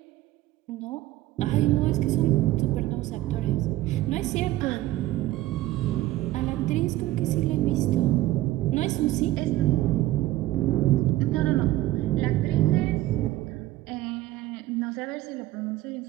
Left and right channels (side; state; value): left; quieter; 15.9 dB